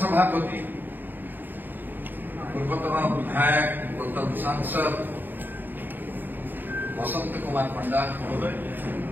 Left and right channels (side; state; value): left; late; 0.091 ms